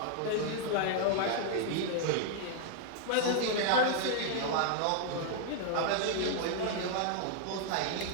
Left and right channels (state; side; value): different; both; correlation 0.00